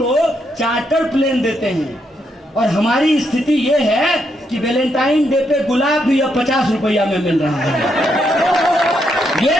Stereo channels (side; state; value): both; normal; correlation 0.78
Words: चार्टर प्लेन देते हैं, और हमारी स्थिति ये है कि वैलेंटाइन डे पे गुलाब भी अब 50 रुपया में मिल रहा है। ये